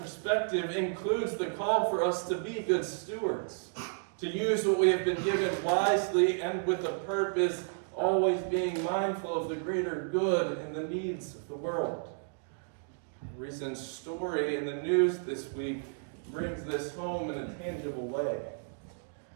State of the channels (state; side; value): silent; left; digital silence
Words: includes the call for us to be good stewards, to use what we have been given wisely and with a purpose, always being mindful of the greater good and the needs of the world. A recent story in the news this week brings this home in a tangible way.